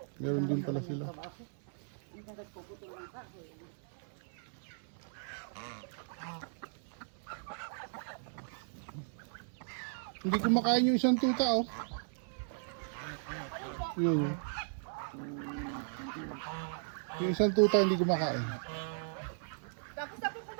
Meron din pala sila. Hindi kumakain yung isang tuta, oh. Yun, yun. Yung isang tuta hindi kumakain. Tapos na po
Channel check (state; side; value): silent; left; 53 dB below the other